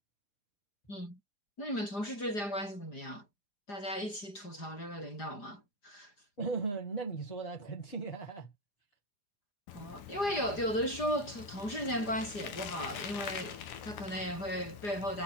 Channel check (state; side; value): late; right; 4.9 ms